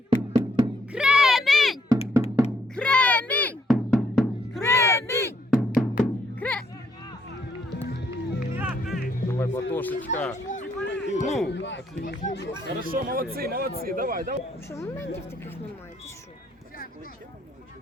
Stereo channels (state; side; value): normal; both; correlation 0.70